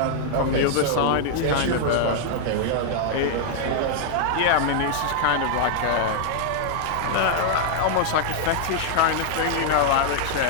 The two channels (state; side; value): different; both; correlation 0.00